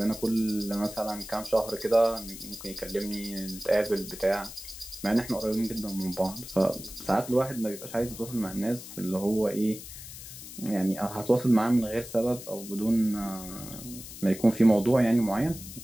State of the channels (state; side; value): noise; left; hiss, 13 dB below the sound